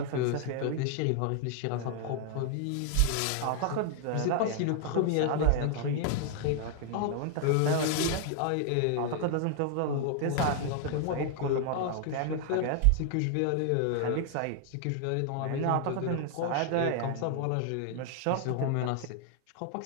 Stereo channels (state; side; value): different; both; correlation 0.00